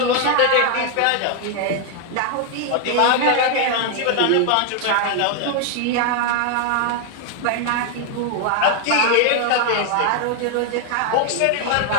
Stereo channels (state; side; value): different; both; correlation 0.00